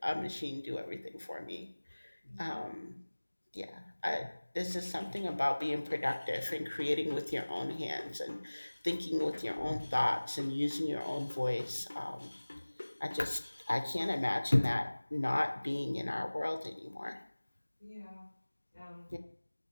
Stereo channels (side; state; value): both; inverted; correlation -1.00